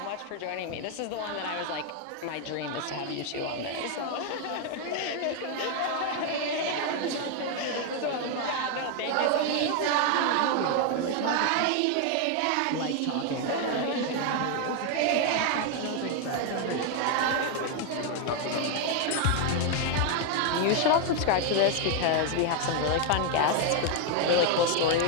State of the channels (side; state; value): both; different; correlation 0.01